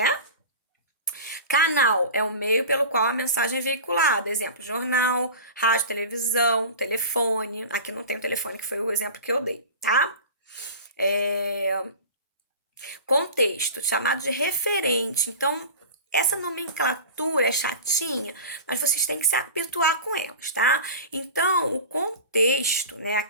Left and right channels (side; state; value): both; inverted; correlation -0.34